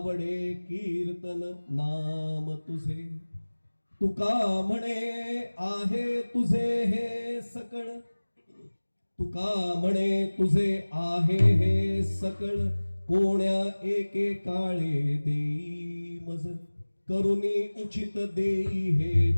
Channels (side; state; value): both; inverted; correlation -1.00